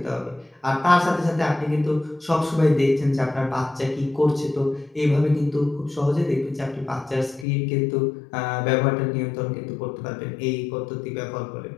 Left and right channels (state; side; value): drops out; right; at 7.5 s